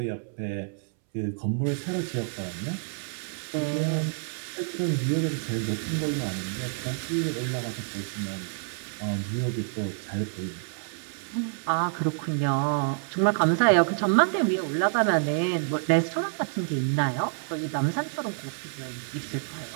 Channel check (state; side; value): silent; left; 59 dB below the other